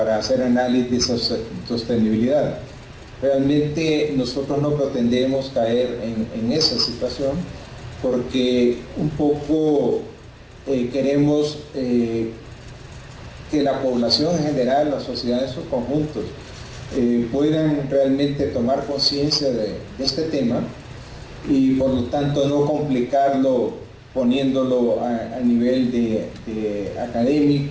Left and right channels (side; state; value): both; identical; correlation 1.00